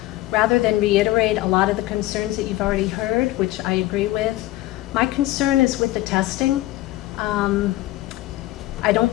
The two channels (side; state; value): right; quieter; 16.9 dB